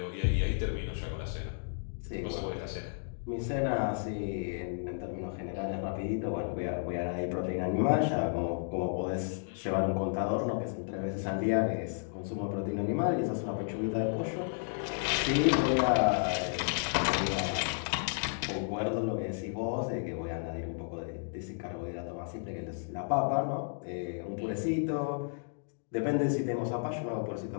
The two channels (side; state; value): right; silent; digital silence